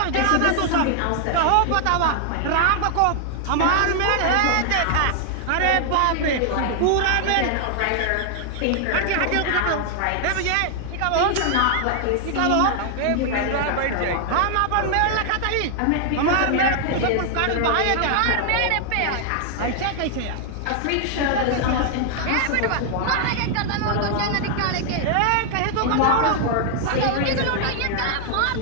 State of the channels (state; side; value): different; both; correlation 0.00